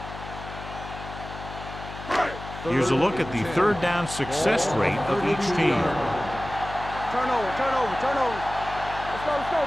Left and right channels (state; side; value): noise; left; hum, 12 dB below the sound